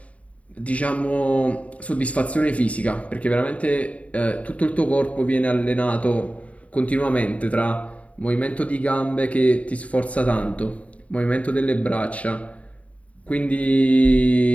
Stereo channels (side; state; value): right; late; 0.066 ms